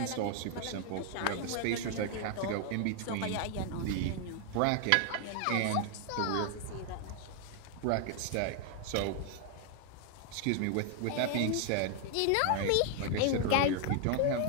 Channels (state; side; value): different; both; correlation 0.00